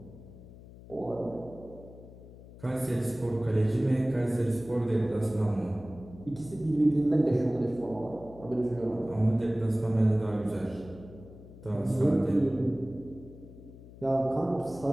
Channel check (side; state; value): left; noise; hum, 18 dB below the sound